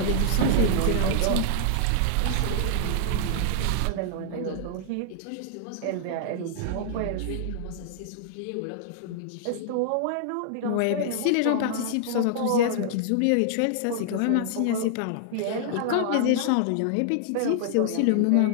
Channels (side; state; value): both; different; correlation -0.01